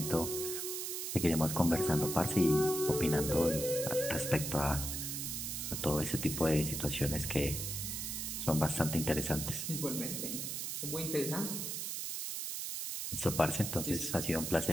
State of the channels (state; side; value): noise; right; hiss, 3 dB below the sound